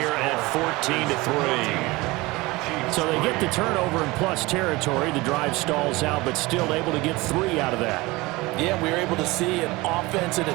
at 14-3. So they get the turnover in plus territory. The drive stalls out, but still able to get 3 out of that. Yeah, we were able to see an offense and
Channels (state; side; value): quieter; left; 21.9 dB